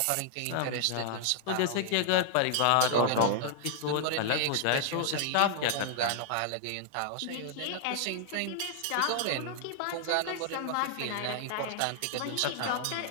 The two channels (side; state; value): both; different; correlation -0.01